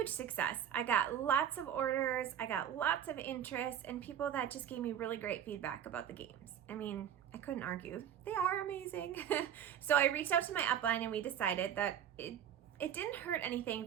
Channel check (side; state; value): left; quieter; 9.7 dB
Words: success, I got lots of orders, I got lots of interest, and people that just gave me really great feedback about the games. I mean, I couldn't argue. They are amazing. So I reached out to my upline, and we decided that it didn't hurt anything